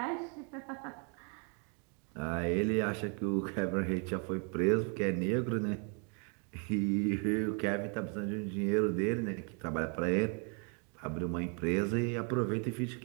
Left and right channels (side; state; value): left; quieter; 37.5 dB